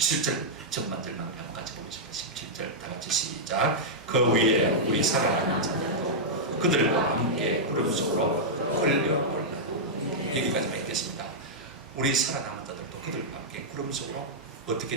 전반절만 한번 같이 보겠습니다. 17절 다 같이 시작. 그 위에 우리 살아남은 자들도 그들과 함께 구름 속으로 끌려올라. 여기까지만 읽겠습니다. 우리 살아남은 자들도 그들과 함께 구름 속으로 어떻게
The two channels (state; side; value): normal; both; correlation -0.08